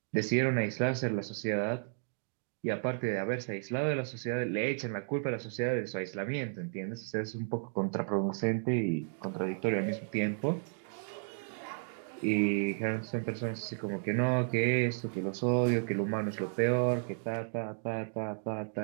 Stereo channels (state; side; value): silent; left; 56 dB below the other